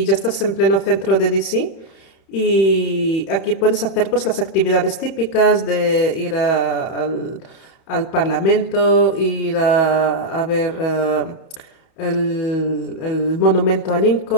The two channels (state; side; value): late; right; 31 ms